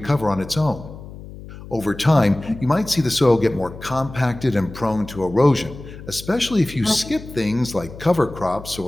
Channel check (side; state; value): left; noise; hum, 15 dB below the sound